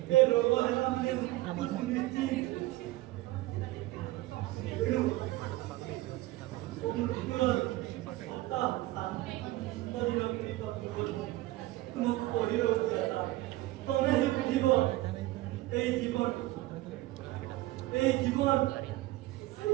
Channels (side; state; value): left; quieter; 18.2 dB